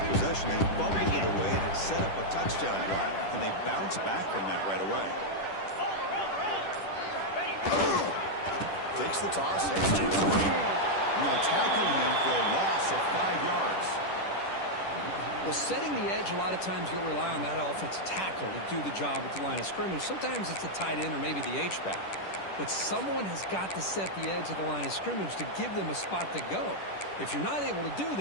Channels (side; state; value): right; late; 10 ms